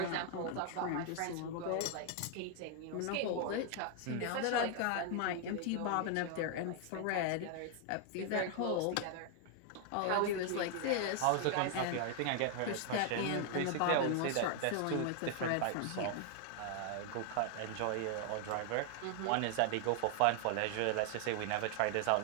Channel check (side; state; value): both; different; correlation 0.00